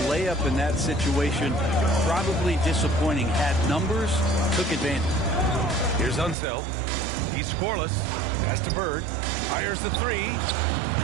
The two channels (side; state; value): left; drops out; at 6.4 s